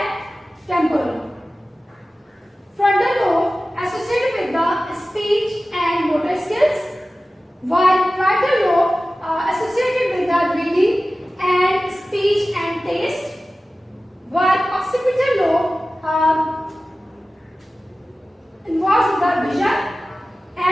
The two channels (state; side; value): normal; both; correlation 0.96